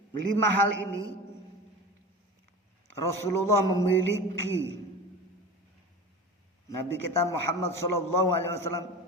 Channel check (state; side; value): normal; both; correlation 0.33